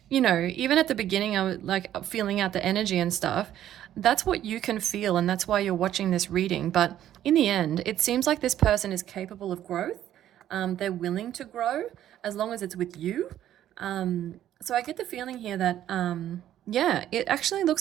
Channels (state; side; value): quieter; left; 11.7 dB